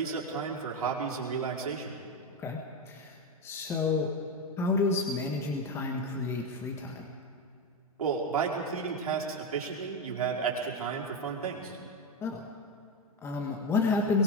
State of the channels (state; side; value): normal; both; correlation 0.12